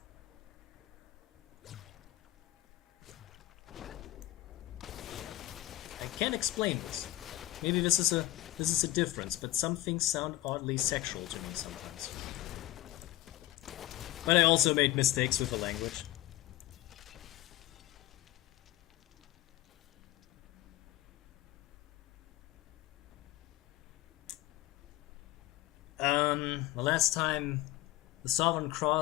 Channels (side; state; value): right; quieter; 16.2 dB